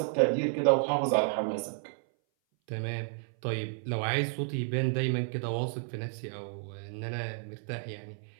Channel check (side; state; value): left; silent; 57 dB below the other